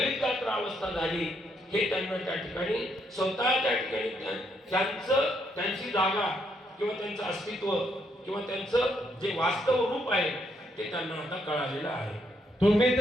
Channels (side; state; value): both; normal; correlation 0.74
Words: गात्र अवस्था झाली. हे त्यांना त्या ठिकाणी स्वतः त्या ठिकाणी त्यांची जागा किंवा त्यांचं अस्तित्व किंवा त्यांचं जे वास्तव रूप आहे ते त्यांना आता कळालेलं आहे. तुम्ही